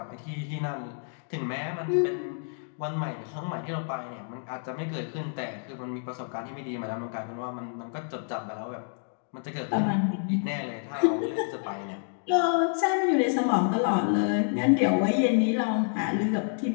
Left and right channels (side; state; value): right; silent; 59 dB below the other